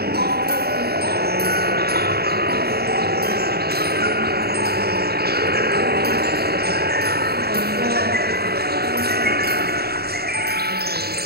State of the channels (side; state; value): left; late; 0.46 ms